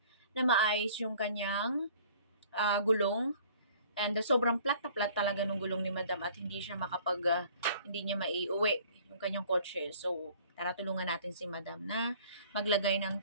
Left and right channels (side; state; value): both; inverted; correlation -0.53